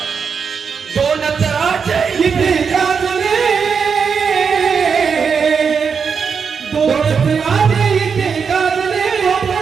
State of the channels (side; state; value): left; quieter; 6.1 dB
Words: दोनच राज्य इथे गाजले, दोनच राजे इथे गाजले